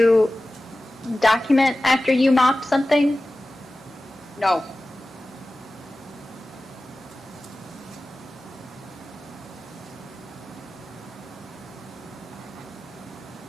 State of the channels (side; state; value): both; normal; correlation 0.96